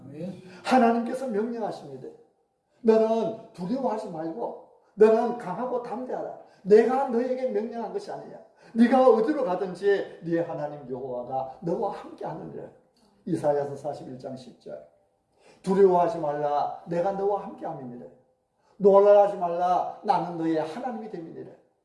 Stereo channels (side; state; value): both; identical; correlation 1.00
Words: 아멘. 하나님께서 명령하십니다. 너는 두려워하지 말고 너는 강하고 담대하라. 내가 너에게 명령한 것이 아니냐. 네가 어디로 가든지 네 하나님 여호와가 너와 함께 하느니라. 이사야서 41장 10절. 두려워하지 말라. 내가 너와 함께 함이니라. 놀라지 말라. 나는 너의 하나님이 됨이니라.